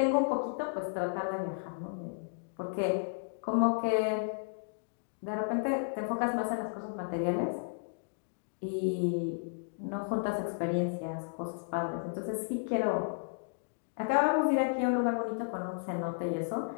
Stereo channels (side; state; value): right; silent; digital silence